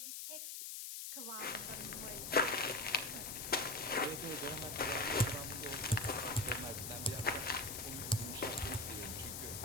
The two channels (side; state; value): left; noise; hiss, 6 dB below the sound